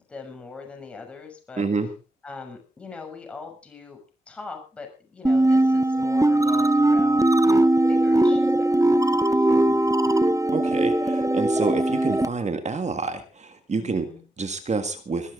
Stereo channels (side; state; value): both; normal; correlation 0.89